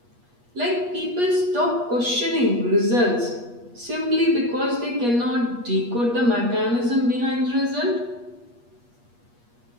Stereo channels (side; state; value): left; late; 8.4 ms